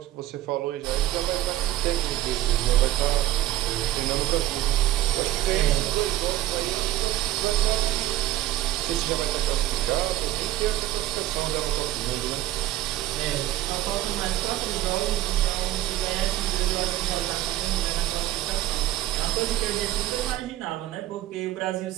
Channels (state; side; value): quieter; left; 14.1 dB